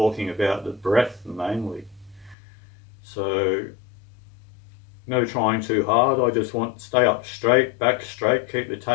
about the breath mainly. So no trying too hard. I just want to stay up straight, back straight, keep the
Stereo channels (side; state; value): right; drops out; at 2.4 s